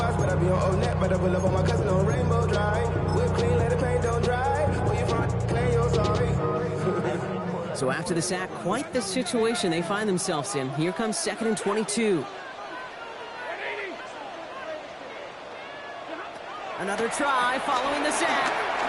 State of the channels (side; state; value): both; identical; correlation 1.00